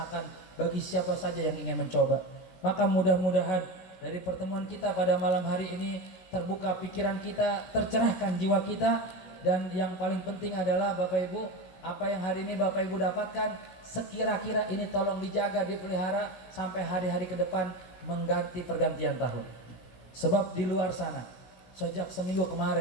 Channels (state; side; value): late; right; 16 ms